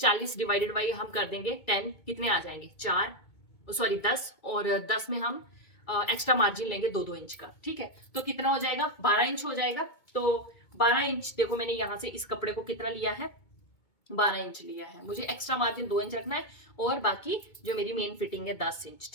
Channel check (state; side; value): late; right; 2.2 ms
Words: डिवाइडेड बाई हम कर देंगे 10, कितने आ जाएंगे 4, सॉरी 10, और 10 में हम एक्स्ट्रा मार्जिन लेंगे 2-2 इंच का, ठीक है। तो कितना हो जाएगा, 12 इंच हो जाएगा। तो 12 इंच देखो मैंने यहाँ से इस कपड़े को कितना लिया है, 12 इंच लिया है। मुझे एक्स्ट्रा मार्जिन 2 इंच रखना है और बाकी जो मेरी मेन फिटिंग है 10 इंच,